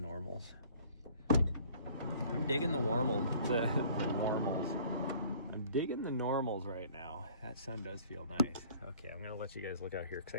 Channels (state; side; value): inverted; both; correlation -0.53